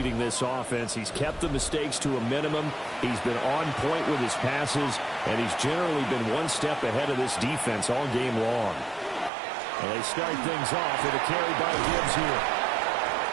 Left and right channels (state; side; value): drops out; left; at 9.3 s